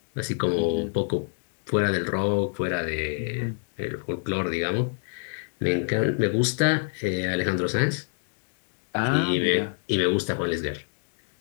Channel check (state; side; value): silent; right; digital silence